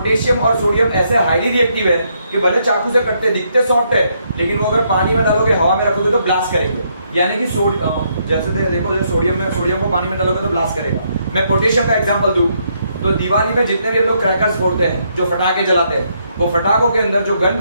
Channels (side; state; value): both; inverted; correlation -0.74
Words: और सोडियम ऐसे हाईली रिएक्टिव है कि भले चाकू से कटते दिखते सॉफ्ट है, लेकिन वो अगर पानी में डालोगे, हवा में रखोगे तो ब्लास्ट करेंगे। यानी कि जैसे देखो सोडियम को पानी में डालोगे तो ब्लास्ट करेगा। मैं पोटेशियम का एग्जांपल दूं तो दिवाली में जितने भी हम लोग क्रैकर्स फोड़ते हैं, जो फटाके जलाते हैं, वो फटाकों के अंदर जो गन